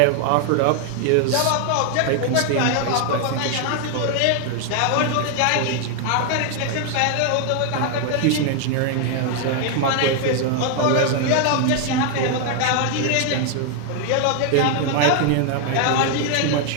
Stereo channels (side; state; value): both; different; correlation 0.00